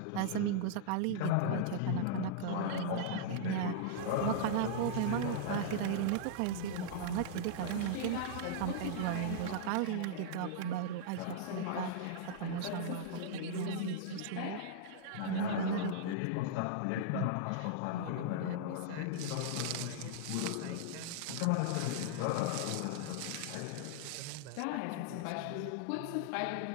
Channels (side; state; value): both; different; correlation -0.02